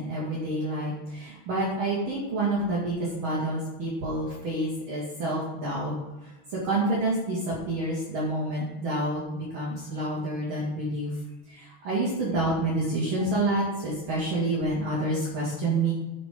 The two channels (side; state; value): left; late; 6.2 ms